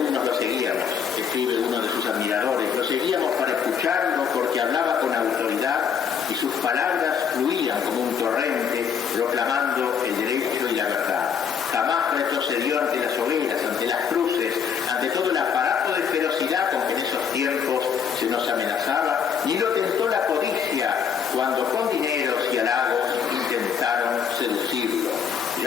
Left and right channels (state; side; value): quieter; right; 7.4 dB